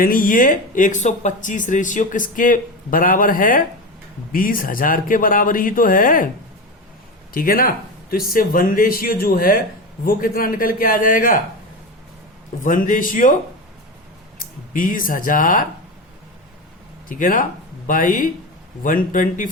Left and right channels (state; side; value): normal; both; correlation 0.22